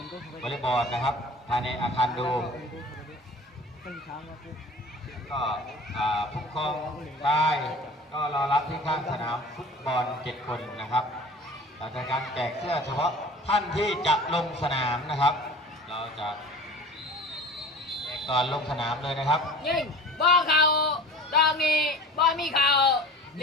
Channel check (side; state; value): both; normal; correlation 0.40